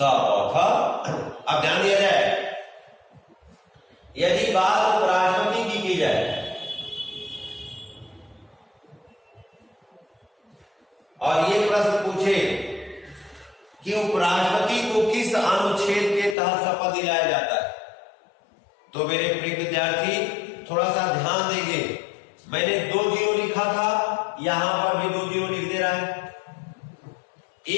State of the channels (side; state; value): right; drops out; at 16.4 s